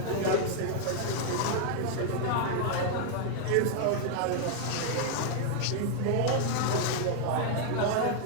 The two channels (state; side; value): different; both; correlation 0.00